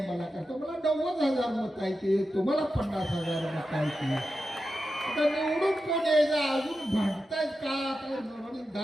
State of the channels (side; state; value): both; normal; correlation 0.90